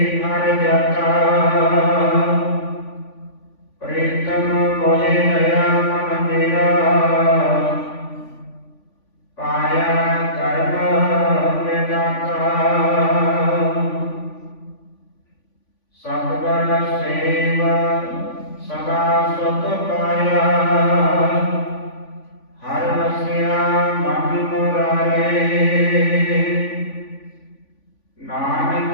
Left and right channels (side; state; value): right; late; 3.5 ms